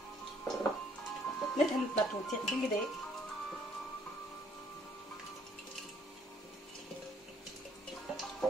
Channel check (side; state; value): both; normal; correlation 0.64